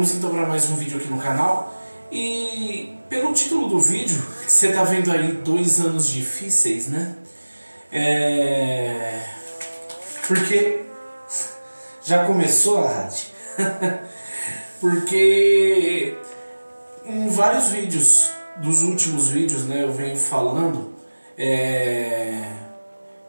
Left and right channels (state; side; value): inverted; both; correlation -1.00